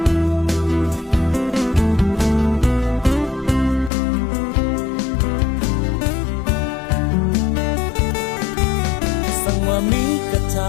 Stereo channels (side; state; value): right; drops out; at 3.9 s